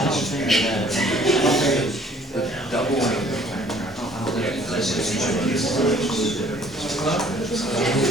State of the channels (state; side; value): normal; both; correlation 0.57